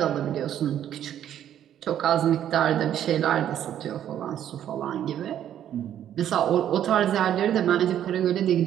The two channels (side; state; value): left; quieter; 10.6 dB